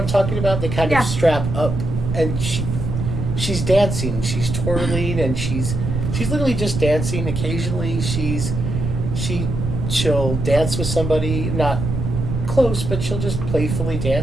I'm talking about? They kind Yeah. of strap up, and she's dancing, she's twirling, and she's literally just dancing. Occasionally, she'll dance with somebody, not close, but she'll just playfully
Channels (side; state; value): right; noise; rumble, 3 dB below the sound